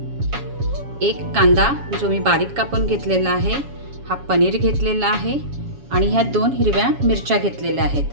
1 कांदा जो मी बारीक कापून घेतलेला आहे. हा पनीर घेतलेला आहे आणि ह्या 2 हिरव्या मिरच्या घेतलेल्या आहेत.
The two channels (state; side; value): late; left; 7.2 ms